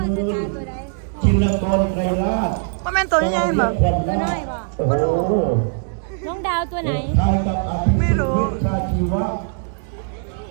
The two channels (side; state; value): left; silent; digital silence